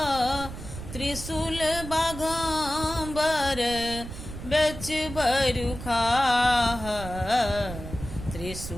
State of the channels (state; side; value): noise; right; rumble, 10 dB below the sound